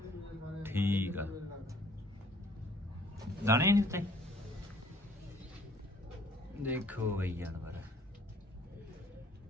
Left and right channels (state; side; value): normal; both; correlation 0.58